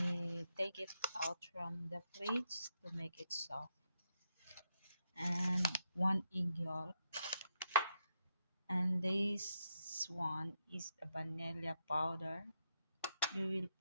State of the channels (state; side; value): inverted; both; correlation -0.80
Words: take it out from the fridge to make it soft, and 1 egg yolk, and this one is a vanilla powder. You will